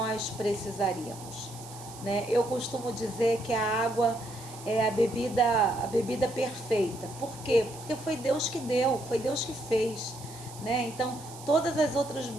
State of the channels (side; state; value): right; noise; hiss, 17 dB below the sound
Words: precisaríamos, né? Eu costumo dizer que a água é a bebida perfeita. Por quê? Porque foi Deus que deu, foi Deus que fez, né? Então, todas as outras